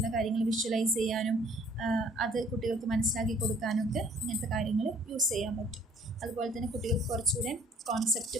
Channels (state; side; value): normal; both; correlation 0.58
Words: കാര്യങ്ങൾ വിഷ്വലൈസ് ചെയ്യാനും അത് കുട്ടികൾക്ക് മനസ്സിലാക്കി കൊടുക്കാനൊക്കെ ഇങ്ങനത്തെ കാര്യങ്ങൾ യൂസ് ചെയ്യാൻ പറ്റും. അതുപോലെ തന്നെ കുട്ടികൾക്ക് കുറച്ചുകൂടെ കോൺസെപ്റ്റ്